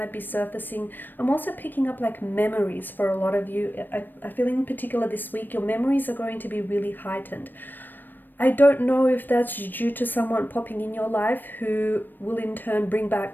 be surfacing. I'm also picking up like memories for a lot of you. I feel in particular this week, your memories are going to be really heightened. I don't know if that's due to someone popping in your life who will in turn bring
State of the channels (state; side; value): late; right; 0.092 ms